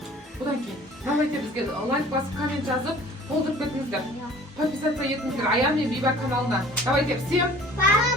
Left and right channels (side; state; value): both; normal; correlation 0.49